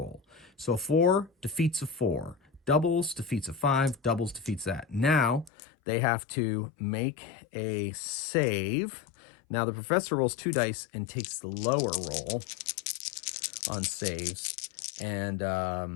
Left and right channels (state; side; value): drops out; right; at 5.5 s